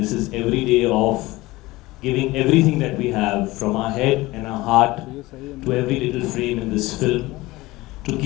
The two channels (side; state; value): right; quieter; 19.8 dB